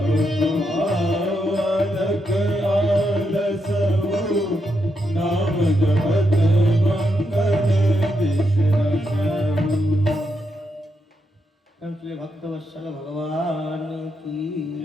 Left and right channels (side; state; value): both; normal; correlation 0.82